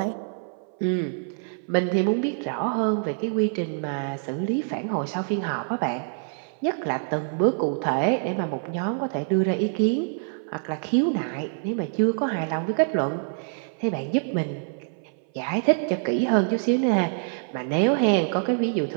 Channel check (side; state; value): left; silent; 59 dB below the other